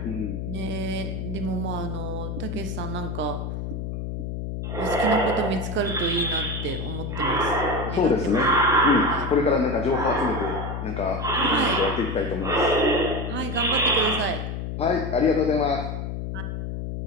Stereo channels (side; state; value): left; noise; hum, 5 dB below the sound